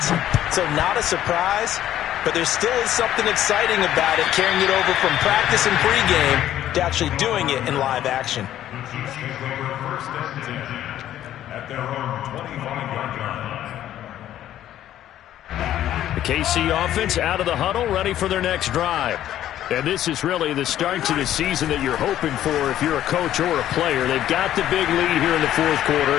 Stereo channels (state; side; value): quieter; right; 12.1 dB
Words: so not a surprise. But there still is something exciting about it, carrying it over from practice and pregame to actually doing it in live action. First and 10 at their own 25-yard line. The KC offense out of the huddle, ready for their next drive. And this is really the start to the season that you're hoping for if you're a coach or a player. They've got the big lead here in the 4th quarter,